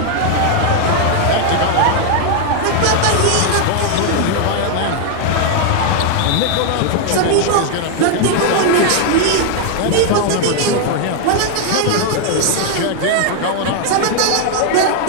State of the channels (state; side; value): different; both; correlation 0.00